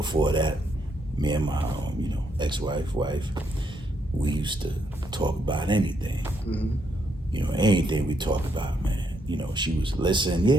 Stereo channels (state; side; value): normal; both; correlation 0.76